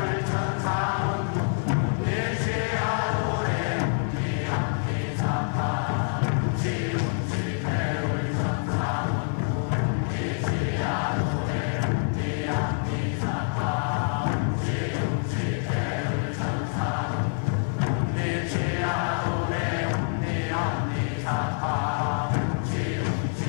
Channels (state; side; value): silent; right; 61 dB below the other